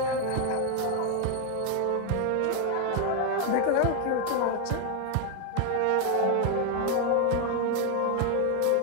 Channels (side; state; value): both; different; correlation 0.01